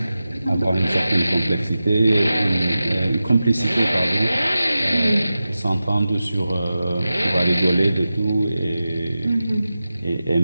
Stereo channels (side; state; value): both; inverted; correlation -0.94